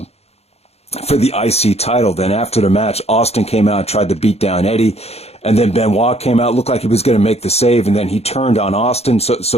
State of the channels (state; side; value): late; right; 0.30 ms